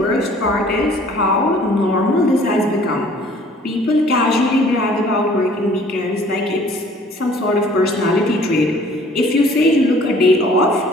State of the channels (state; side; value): normal; both; correlation 0.54